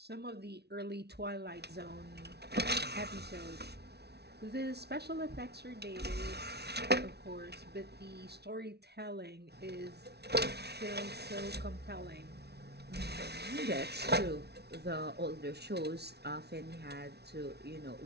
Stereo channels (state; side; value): late; left; 0.49 ms